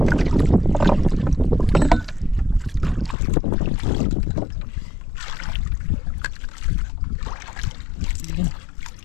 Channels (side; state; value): right; drops out; at 3.2 s